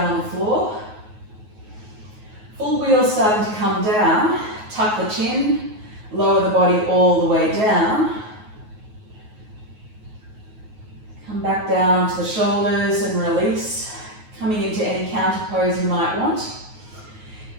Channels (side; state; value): left; late; 9.4 ms